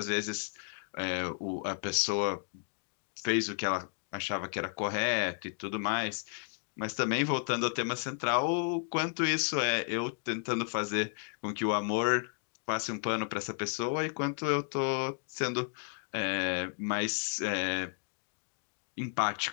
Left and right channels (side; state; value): right; silent; 56 dB below the other